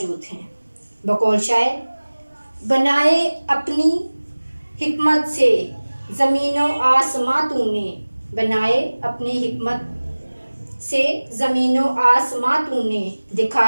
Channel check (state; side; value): inverted; both; correlation -1.00